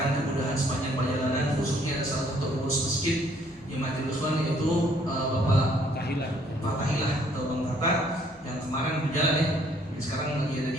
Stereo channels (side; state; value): both; normal; correlation 0.63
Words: mudah-mudahan sepanjang perjalanan, khususnya ada salah satu pengurus masjid yang mati ikhwan, yaitu Bapak Tahilah atau Bang Tata yang kemarin berjalan ya. Sekarang lagi ada